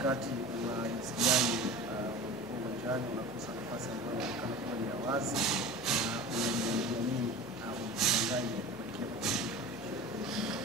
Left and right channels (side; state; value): left; noise; hum, 20 dB below the sound